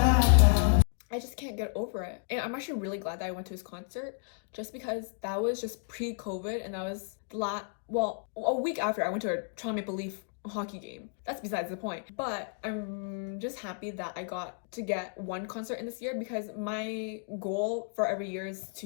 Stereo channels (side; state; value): right; silent; 56 dB below the other